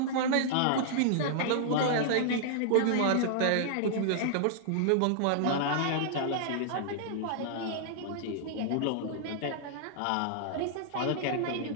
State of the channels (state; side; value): different; both; correlation -0.01